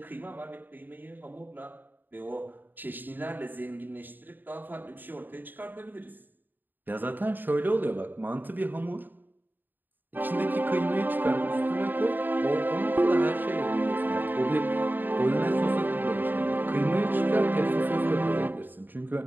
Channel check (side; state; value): left; late; 0.091 ms